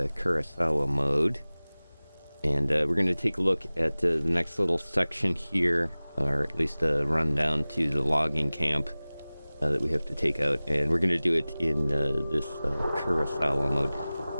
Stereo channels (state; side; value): inverted; both; correlation -0.99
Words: Kurosawa mode. And we're going to take a look at the next little section here, or at least a rundown to the logging camp that we have to take out. And we're going to do it in this Kurosawa mode.